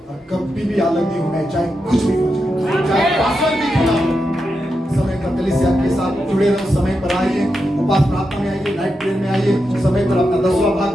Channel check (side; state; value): both; normal; correlation 0.87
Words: और कभी भी अलग नहीं होना है, चाहे कुछ भी हो जाए, चाहे पासवान भी क्यों ना हो। समय पर कलीसिया के साथ जुड़े रहो, समय पर आइए, उपास प्रार्थना में आइए, नाइट प्रेयर में आइए, समय पर अपना 10वां भाग